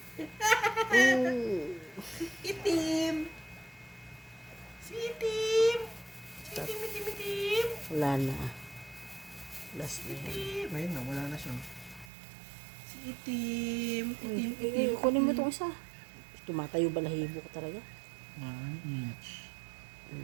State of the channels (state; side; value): drops out; left; at 12.1 s